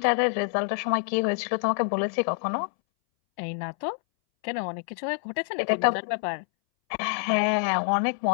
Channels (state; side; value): silent; right; 61 dB below the other